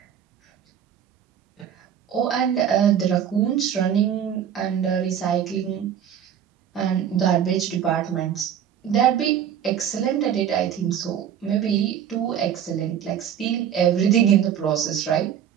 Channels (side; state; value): left; quieter; 9.1 dB